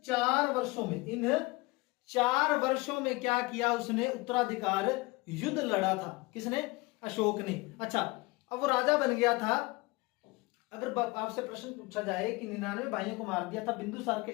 4 वर्षों में क्या किया उसने? उत्तराधिकार युद्ध लड़ा था। किसने? अशोक ने। अच्छा, अब वो राजा बन गया था। अगर आपसे प्रश्न पूछा जाए कि 99 भाइयों को मार दिया था, बिंदुसार के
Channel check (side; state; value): right; quieter; 23.8 dB